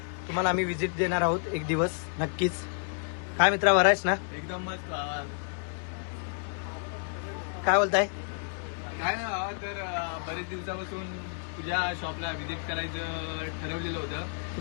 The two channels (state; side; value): silent; right; 58 dB below the other